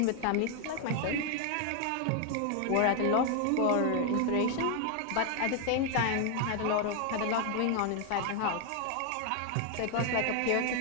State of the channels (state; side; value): different; both; correlation 0.01